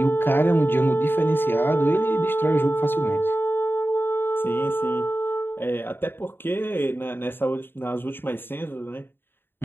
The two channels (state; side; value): late; right; 0.10 ms